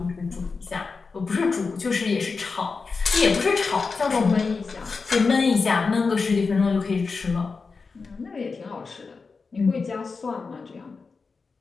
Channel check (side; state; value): right; quieter; 4.6 dB